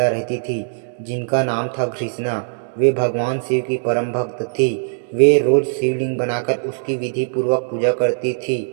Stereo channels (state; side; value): silent; left; digital silence